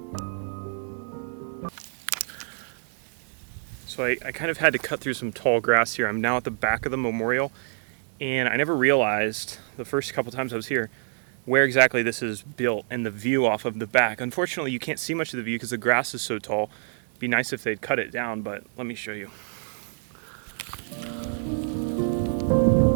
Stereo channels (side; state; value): left; silent; digital silence